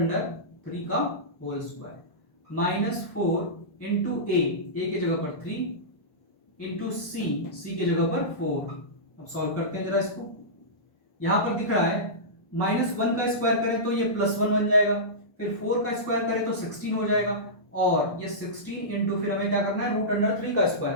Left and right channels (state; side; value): late; right; 1.2 ms